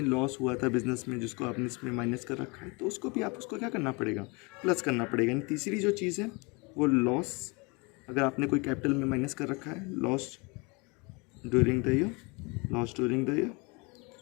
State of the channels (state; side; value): quieter; right; 28.8 dB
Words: लॉस हुआ था बिजनेस में, जिसको आपने इसमें माइनस कर रखा है, तो उसको भी आपको क्या करना पड़ेगा, प्लस करना पड़ेगा। यानी तीसरी जो चीज़ है वो लॉस, अगर आपने कोई कैपिटल में माइनस कर रखा है, लॉस ड्यूरिंग द ईयर,